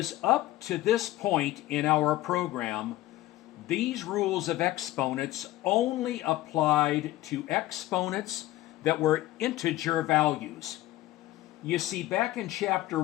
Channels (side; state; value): right; quieter; 16.1 dB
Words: up to this point in our program, these rules of exponents only applied to exponents that were integer values. You see, back in chapter